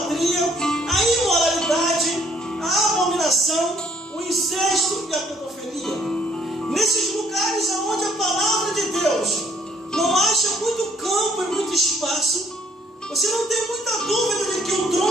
a imoralidade, a abominação, o incesto e a pedofilia. Nesses lugares onde a palavra de Deus não acha muito campo e muito espaço, você não tem muita dúvida de que o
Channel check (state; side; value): normal; both; correlation 0.65